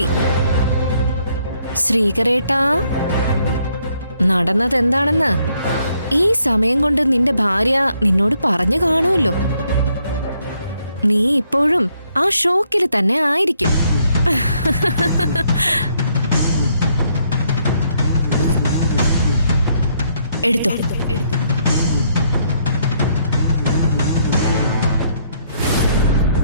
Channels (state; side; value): inverted; both; correlation -0.71